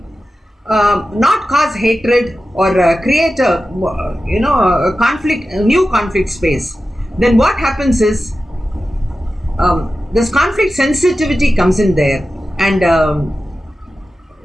not cause hatred or create a new conflict space, then what happens is this conflict sensitivity comes in there, and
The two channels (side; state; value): both; normal; correlation 0.93